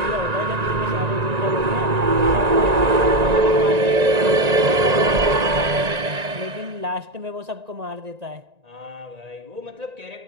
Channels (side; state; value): left; late; 1.9 ms